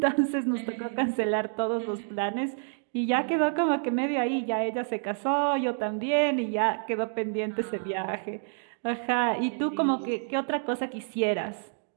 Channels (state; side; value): silent; left; digital silence